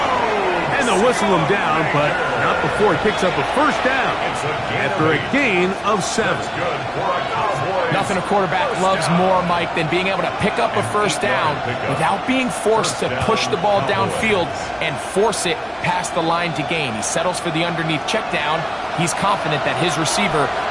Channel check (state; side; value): identical; both; correlation 1.00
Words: And they'll whistle him down, but not before he picks up a first down after a gain of 7. Nothing a quarterback loves more, Mike, than being able to pick up a first down without being forced to push the ball downfield and force it past the line to gain. He settles for the underneath check down. He's confident that his receiver